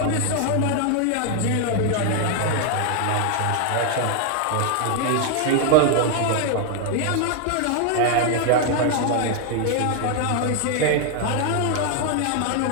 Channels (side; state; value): both; different; correlation 0.01